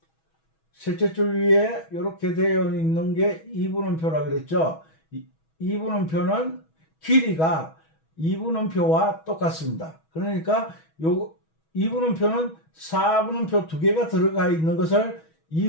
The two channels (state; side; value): late; right; 6.2 ms